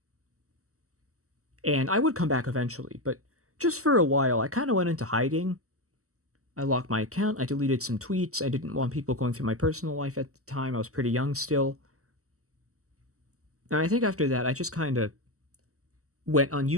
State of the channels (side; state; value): left; late; 0.65 ms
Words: and I would come back eventually, but just for a while, I kind of went into hiding. I locked my account. I deleted some tweets. I didn't want people going through my personal life at the time. I was pretty young still. And I think after that, I just kind of went on